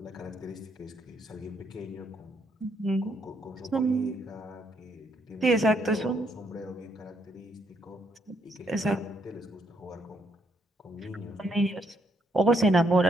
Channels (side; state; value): both; normal; correlation 0.74